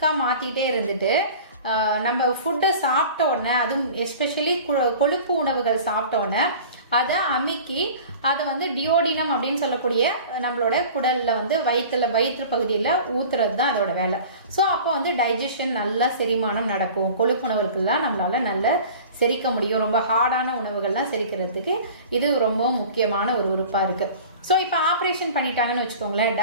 மாத்திட்டே இருந்துட்டு நம்ம ஃபுட்டை சாப்பிட்ட உடனே, அதுவும் எஸ்பெஷலி கொழுப்பு உணவுகள் சாப்பிட்ட உடனே அதை அமுக்கி அதை டியோடினம் அப்படின்னு சொல்லக்கூடிய நம்மளோட குடல்ல வயிற்று பகுதியில் ஊத்துறது தான் அதோட வேலை. ஸோ அப்போ டைஜஷன் நல்லா செரிமானம் நடக்கும். கொழுப்பு உணவுகள்லாம் நம்மளால நல்ல செரிக்க முடியும். ரொம்ப ஹார்டான உணவுகள்லாம் செரிக்கிறதுக்கு இது ரொம்ப முக்கியமான ஒரு உறுப்பா இருக்கு. ஸோ இப்போ ஆப்ரேஷன் பண்ணிட்டாங்கன்னு வச்சுக்கோங்களேன்,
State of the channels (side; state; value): both; inverted; correlation -0.41